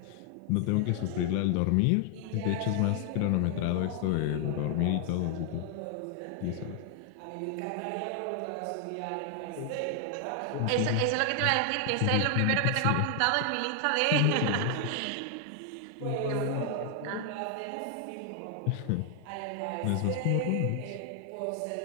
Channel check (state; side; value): different; both; correlation 0.00